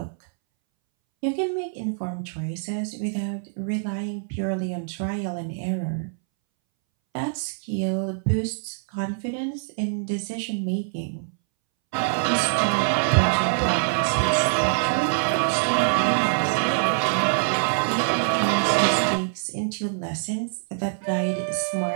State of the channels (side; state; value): left; silent; 62 dB below the other